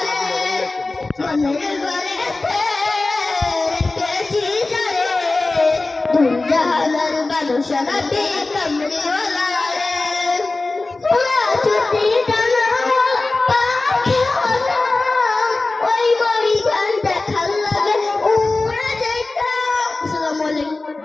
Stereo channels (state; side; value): quieter; right; 3.3 dB